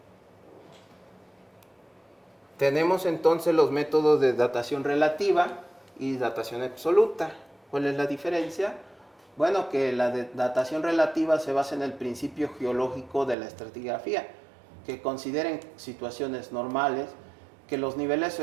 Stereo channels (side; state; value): left; drops out; at 13.4 s